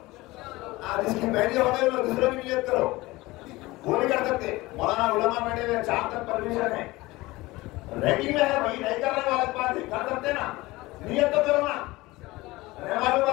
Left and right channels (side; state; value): right; quieter; 20.3 dB